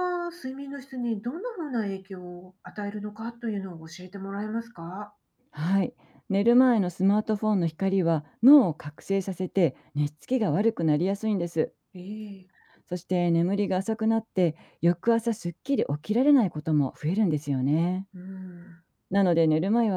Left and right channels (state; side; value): identical; both; correlation 1.00